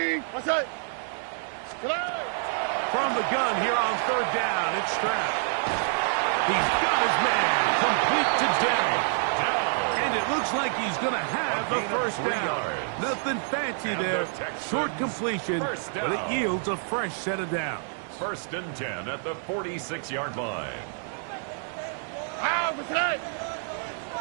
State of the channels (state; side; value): silent; left; 60 dB below the other